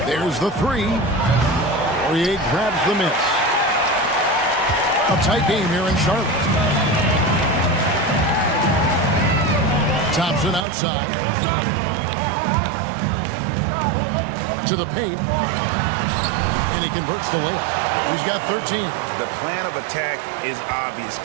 There's the three. Poirier grabs the miss. A tight game here in Charlotte. Thompson outside. To the paint. And he converts the layup. He's got 13. The plan of attack is obvious.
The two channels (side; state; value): left; drops out; at 10.7 s